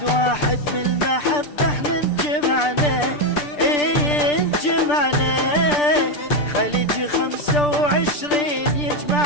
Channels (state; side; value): late; right; 6.8 ms